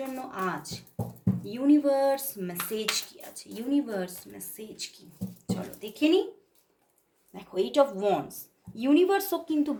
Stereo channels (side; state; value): both; identical; correlation 1.00